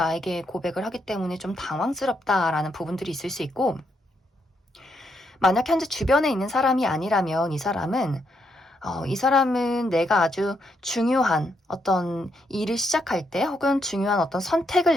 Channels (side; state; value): both; normal; correlation 0.78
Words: 고백을 하기 때문에 좀 당황스럽다라는 부분들이 있을 수 있고, 만약 현재 주변에 있는 사람이 아니라면 이 사람은 내가 아주 중요한 어떤 일을 시작할 때 혹은 중요한 어떤